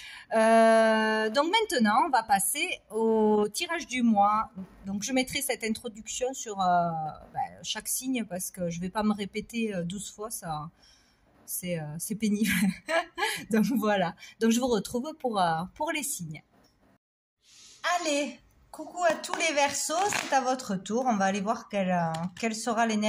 Donc maintenant, on va passer au tirage du mois. Donc je mettrai cette introduction sur chaque signe parce que je vais pas me répéter 12 fois, ça c'est pénible. Donc voilà. Donc je vous retrouve pour les signes. Allez, coucou à tous les Verseaux, c'est à votre tour. On va aller voir quelle sera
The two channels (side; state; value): both; identical; correlation 1.00